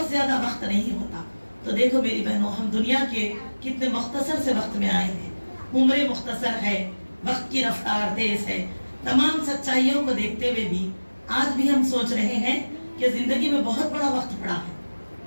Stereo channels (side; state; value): both; inverted; correlation -1.00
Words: ज्यादा वक्त नहीं होता। तो देखो मेरी बहनों, हम दुनिया के कितने मुख्तसर से वक्त में आए हैं, उम्र मुख्तसर है, वक्त की रफ्तार तेज है। तमाम सच्चाइयों को देखते हुए भी आज भी हम सोच रहे हैं कि जिंदगी में बहुत बड़ा वक्त पड़ा है,